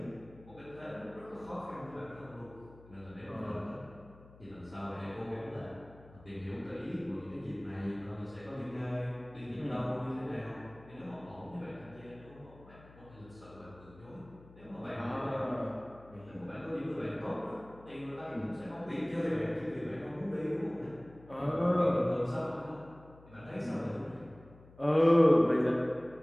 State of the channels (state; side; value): noise; left; hum, 22 dB below the sound